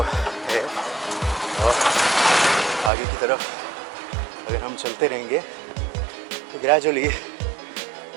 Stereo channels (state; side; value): drops out; left; at 2.9 s